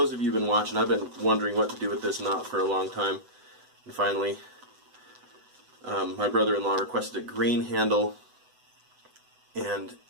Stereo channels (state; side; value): late; left; 8.0 ms